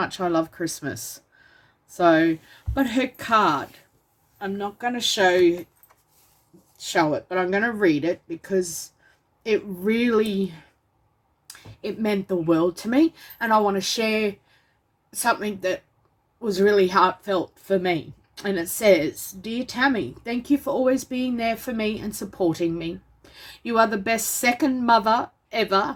I love Christmas. So, but her card, I'm not going to show it, but I'm going to read it because it meant the world to me. And I want to share something that was really heartfelt for me. And it says, "Dear Tammy, thank you for always being there for me and supporting me. You are the best second mother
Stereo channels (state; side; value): identical; both; correlation 1.00